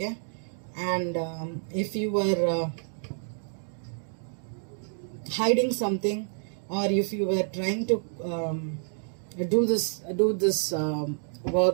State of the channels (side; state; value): left; silent; 59 dB below the other